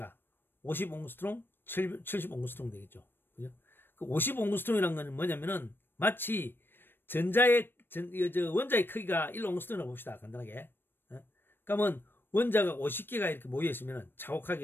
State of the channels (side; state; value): right; late; 0.098 ms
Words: 50옹스트롱, 70옹스트롱 되겠죠. 그죠? 그 50옹스트롱이라는 건 뭐냐면은 마치 원자의 크기가 1옹스트롱이라고 봅시다. 간단하게. 그러면 원자가 50개가 이렇게 모여있으면